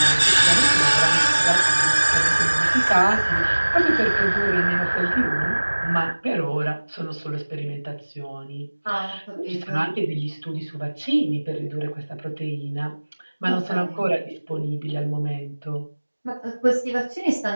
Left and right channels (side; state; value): both; inverted; correlation -1.00